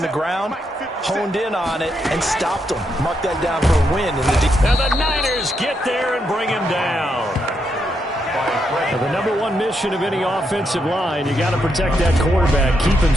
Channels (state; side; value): normal; both; correlation 0.80